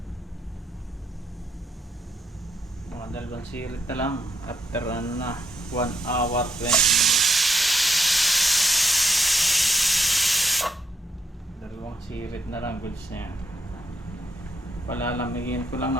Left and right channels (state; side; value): normal; both; correlation 0.71